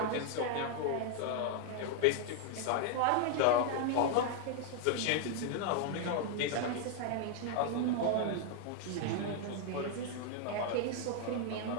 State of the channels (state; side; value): different; both; correlation 0.00